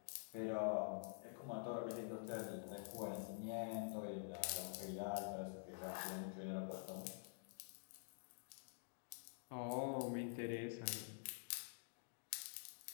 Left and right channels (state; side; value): silent; right; digital silence